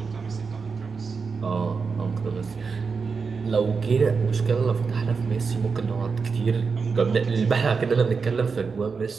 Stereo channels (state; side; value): quieter; left; 5.1 dB